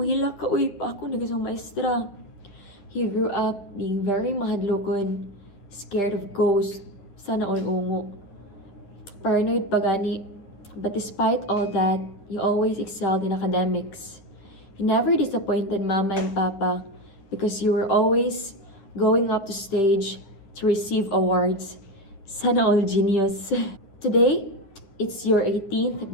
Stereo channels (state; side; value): late; right; 10 ms